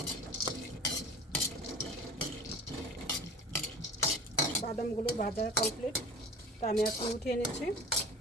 বাদামগুলো ভাজা কমপ্লিট, তো আমি এখন উঠিয়ে নিচ্ছি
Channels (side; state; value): both; normal; correlation 0.39